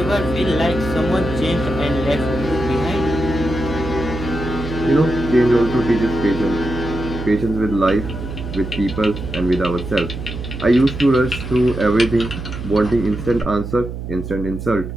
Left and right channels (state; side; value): noise; right; hum, 8 dB below the sound